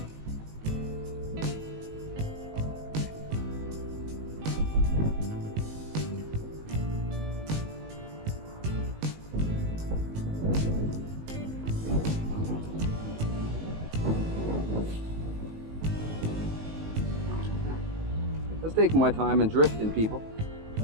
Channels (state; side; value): late; left; 19 ms